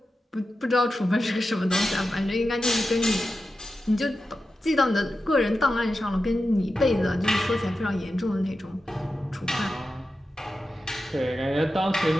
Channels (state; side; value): normal; both; correlation 0.91